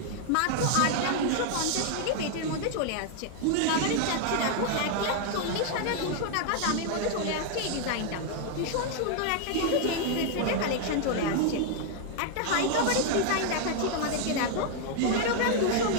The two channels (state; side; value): different; both; correlation 0.00